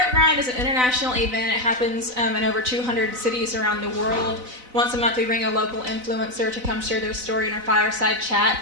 Grind is an international event. It happens in over 200 cities around the world. Once a month we bring a local influencer to come share their story in our fireside chat,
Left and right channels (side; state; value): left; late; 4.0 ms